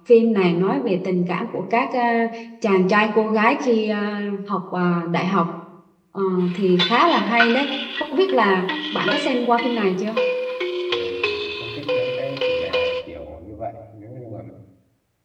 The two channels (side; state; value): both; identical; correlation 1.00